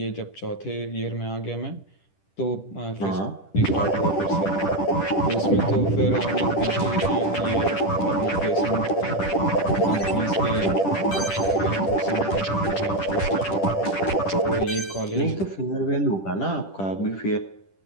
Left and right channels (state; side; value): late; right; 10 ms